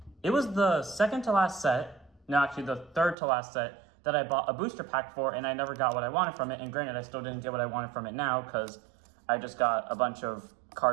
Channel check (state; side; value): drops out; left; at 3.2 s